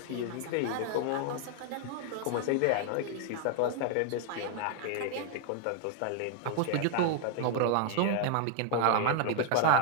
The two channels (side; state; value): both; different; correlation 0.00